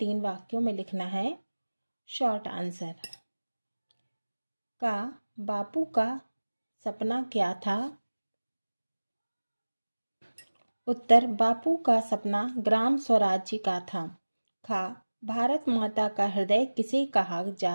वाक्यों में लिखना है। Short answer. का बापू का सपना क्या था? उत्तर, बापू का सपना ग्राम स्वराज्य का था। खा, भारत माता का हृदय किसे कहा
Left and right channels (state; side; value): inverted; both; correlation -1.00